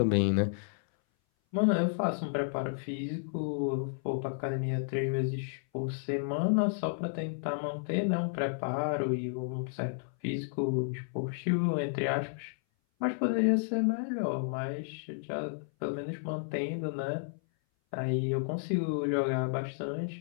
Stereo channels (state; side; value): silent; right; 56 dB below the other